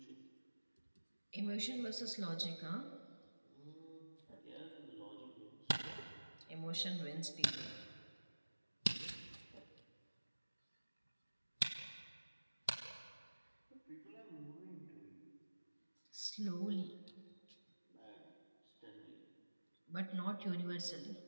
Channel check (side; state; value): both; inverted; correlation -1.00